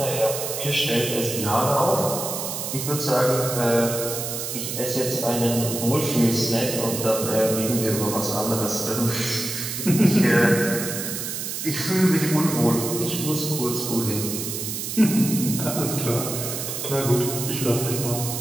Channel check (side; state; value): right; noise; hiss, 5 dB below the sound